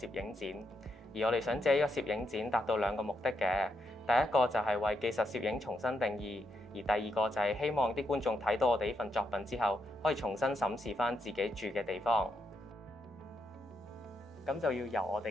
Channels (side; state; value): both; normal; correlation 0.80